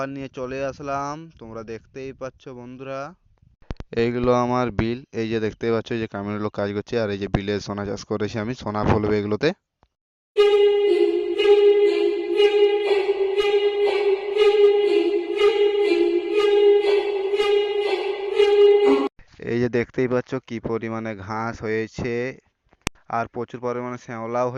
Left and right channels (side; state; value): both; identical; correlation 1.00